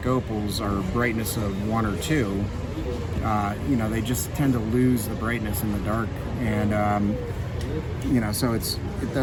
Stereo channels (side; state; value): both; identical; correlation 1.00